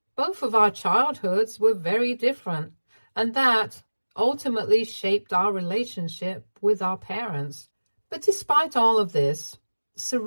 both of our childhoods were very different, and that ultimately shaped our relationship with our parents. But despite all of this,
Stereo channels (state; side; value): inverted; both; correlation -1.00